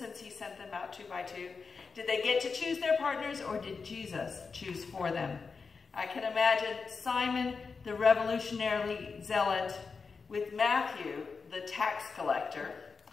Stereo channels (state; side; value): quieter; right; 4.9 dB